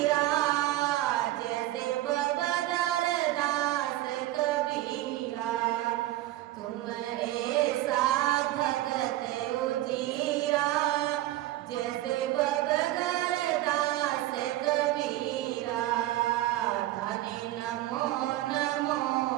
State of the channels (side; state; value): left; quieter; 15.4 dB